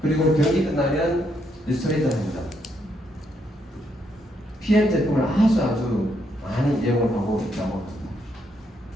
그리고 경기 끝나면 리스토레이트 한 잔, PM 제품을 아주 많이 이용을 하고 있다고 합니다.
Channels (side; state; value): both; normal; correlation 0.76